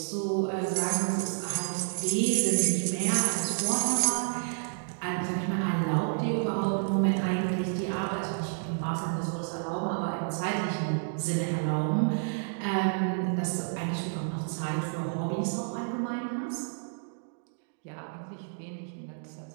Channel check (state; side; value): silent; left; digital silence